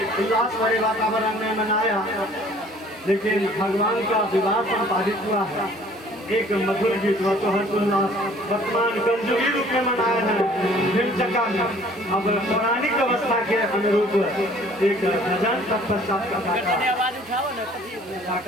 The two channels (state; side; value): normal; both; correlation 0.54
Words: उल्लास भरे वातावरण में मनाया, लेकिन भगवान का विवाह संपादित हुआ है एक मधुर गीत व तो हर्षोल्लास वर्तमान कंजुगी रूप में मनाया है हिमचक्का में। अब पौराणिक अवस्था के अनुरूप एक भजन तत्पश्चात का